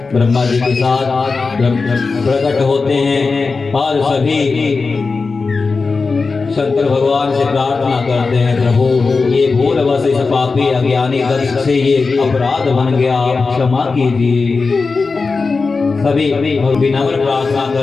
ब्रह्मा जी के साथ प्रकट होते हैं और सभी शंकर भगवान से प्रार्थना करते हैं, प्रभु ये भूलवश इस पापी अज्ञानी दक्ष से ये अपराध बन गया, क्षमा कीजिए। सभी विनम्र प्रार्थना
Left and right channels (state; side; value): quieter; right; 4.3 dB